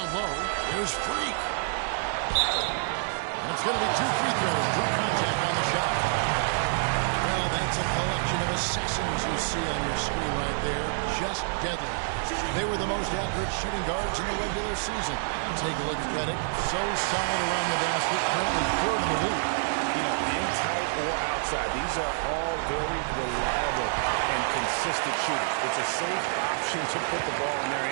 low, there's Freak. And it's going to be 2 free throws. Drew contact on the shot. Well, that's a collection of assassins you see on your screen right there. Just deadly. They were the most accurate shooting guards in the regular season. Take a look at Redick. So solid around the basket. Currently 3rd in the league. In tight or outside, these are all very reliable and consistent shooters. It's a safe option to put the ball in their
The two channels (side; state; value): left; silent; digital silence